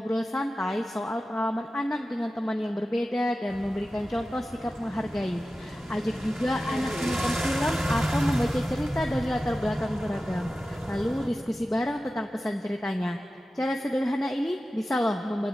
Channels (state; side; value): normal; both; correlation 0.94